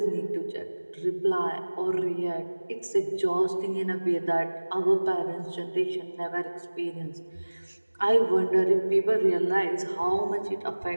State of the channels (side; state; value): both; inverted; correlation -1.00